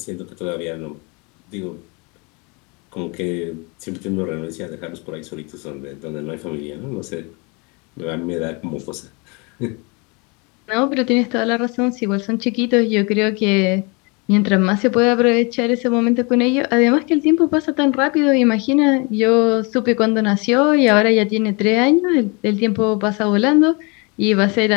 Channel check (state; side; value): quieter; right; 30.3 dB